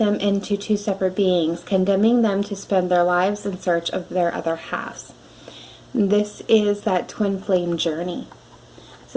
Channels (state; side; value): identical; both; correlation 1.00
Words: into 2 separate beings, condemning them to spend their lives in search of their other halves. This is that twin flame journey.